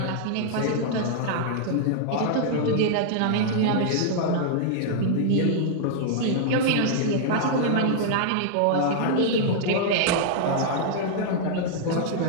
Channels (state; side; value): different; both; correlation -0.01